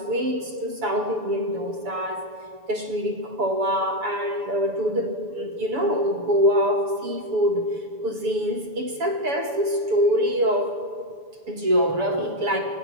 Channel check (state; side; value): late; left; 7.0 ms